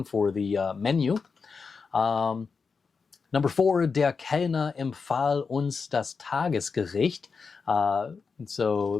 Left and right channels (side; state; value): right; quieter; 5.1 dB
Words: for the menu. Number 4, der Kellner empfahl uns das Tagesgericht.